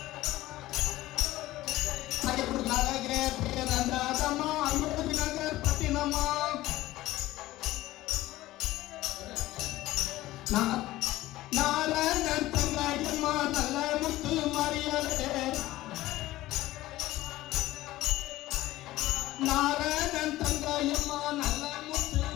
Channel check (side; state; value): right; quieter; 16.6 dB